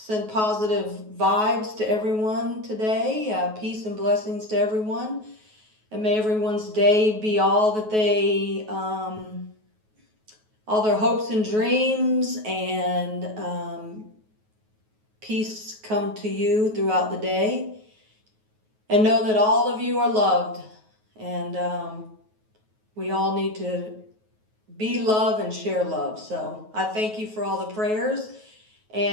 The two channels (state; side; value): late; left; 9.3 ms